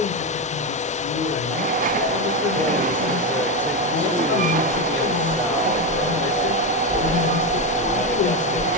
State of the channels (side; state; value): both; normal; correlation 0.11